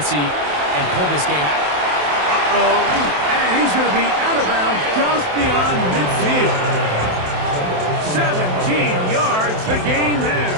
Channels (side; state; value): left; late; 27 ms